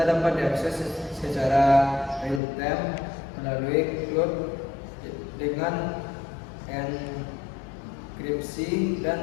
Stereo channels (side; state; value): right; drops out; at 2.4 s